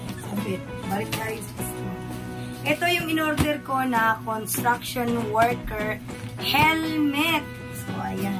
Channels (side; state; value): both; identical; correlation 1.00